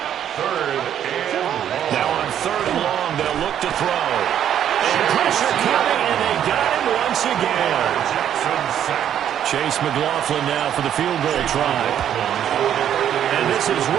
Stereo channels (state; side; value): quieter; left; 10.0 dB